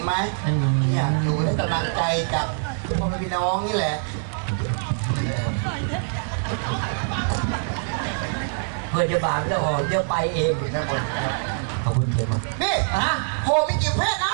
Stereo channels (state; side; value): silent; left; digital silence